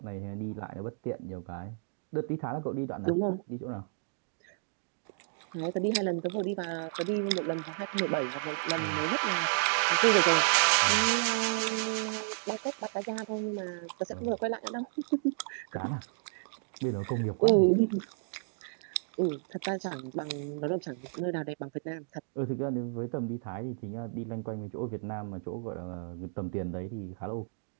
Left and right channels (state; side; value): silent; left; digital silence